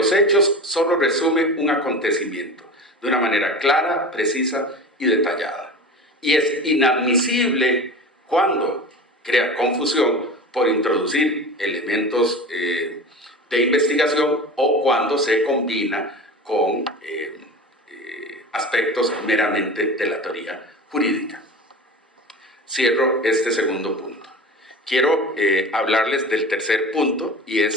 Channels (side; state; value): both; normal; correlation 0.33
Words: hechos solo resume un acontecimiento de una manera clara, precisa y detallada. Y es inadmisible cuando crea confusión por introducir elementos de investigación o cuando se combina con aspectos meramente de la teoría jurídica. Cierro este segundo punto. Quiero hablarles del tercer punto y